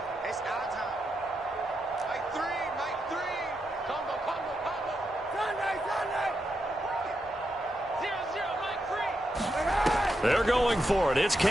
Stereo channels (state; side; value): normal; both; correlation 0.84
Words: It's our time. Mike 3. Combo. Sunday. 0-0, Mike 3. They're going for it. It's